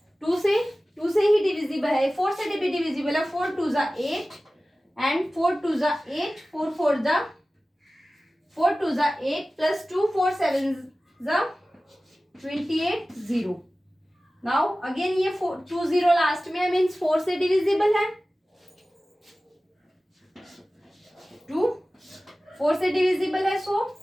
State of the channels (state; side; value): normal; both; correlation 0.96